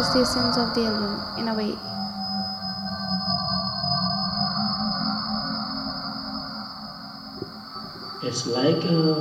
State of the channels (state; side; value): identical; both; correlation 1.00